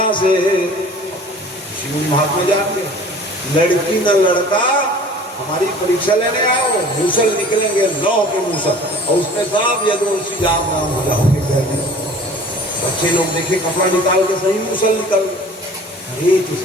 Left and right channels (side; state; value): both; normal; correlation 0.46